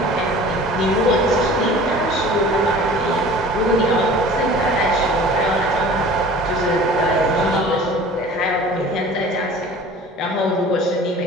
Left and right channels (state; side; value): normal; both; correlation 0.43